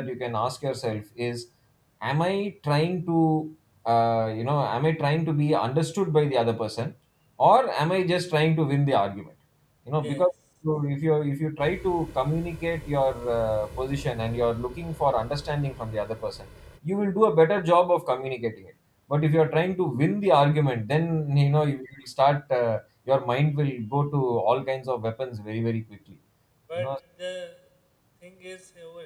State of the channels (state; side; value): identical; both; correlation 1.00